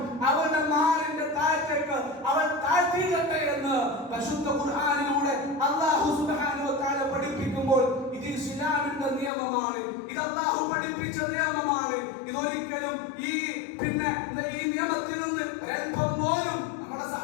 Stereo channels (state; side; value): drops out; right; at 9.3 s